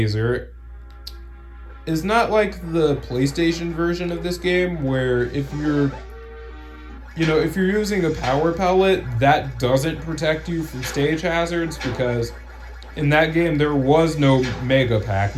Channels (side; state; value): both; identical; correlation 1.00